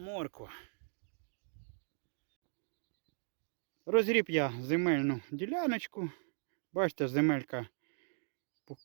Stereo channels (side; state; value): left; silent; digital silence